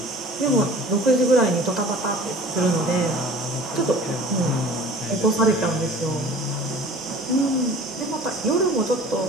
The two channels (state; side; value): normal; both; correlation 0.44